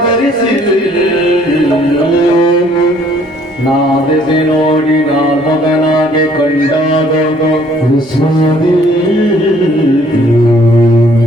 ನಾದಿಸಿ ನೋಡಿ ನಾಲ್ಮಗನಾಗೆ ಕಂಡಾಗ ವಿಸ್ಮದಿ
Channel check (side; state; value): both; normal; correlation 0.60